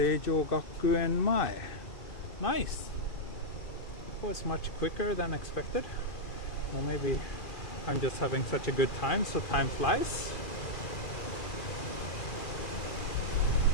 Gakuen Mae. Nice! That was much quicker than expected. Or maybe I'm just having such a good time, so time flies.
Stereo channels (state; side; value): late; right; 2.5 ms